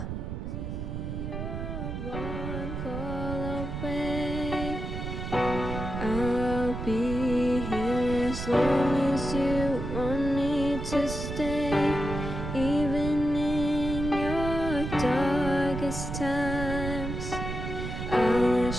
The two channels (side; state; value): right; noise; rumble, 5 dB below the sound